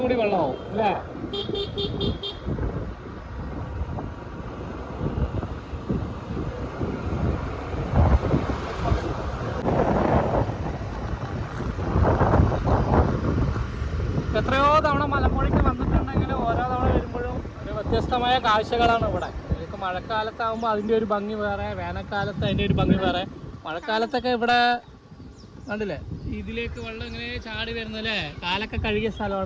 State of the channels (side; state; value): both; identical; correlation 1.00